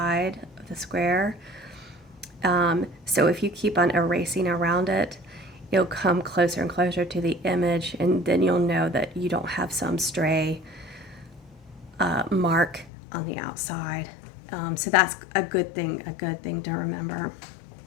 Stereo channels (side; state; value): right; drops out; at 12.9 s